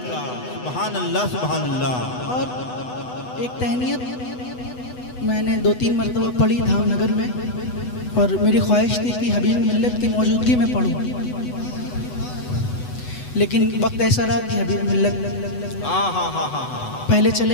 का, सुभान अल्लाह, सुभान अल्लाह। और एक तहनीयत मैंने 2-3 मरतबा पढ़ी धामनगर में, और मेरी ख्वाहिश थी कि हबीब मिल्लत की मौजूदगी में पढ़ूं, लेकिन वक्त ऐसा रहा कि हबीब मिल्लत पहले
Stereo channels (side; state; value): right; late; 8.0 ms